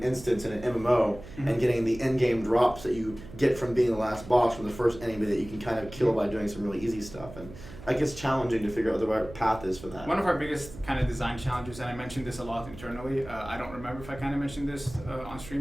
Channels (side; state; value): right; noise; hum, 15 dB below the sound